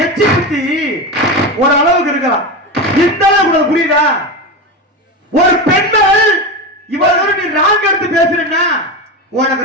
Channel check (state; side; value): normal; both; correlation 0.20